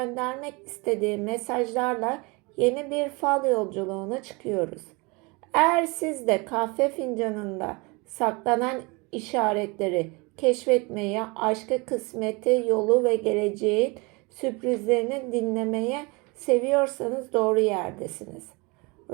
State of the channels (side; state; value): left; quieter; 27.5 dB